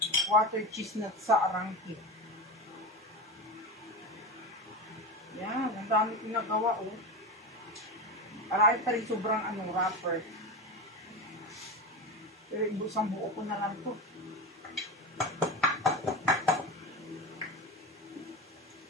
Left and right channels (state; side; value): normal; both; correlation 0.22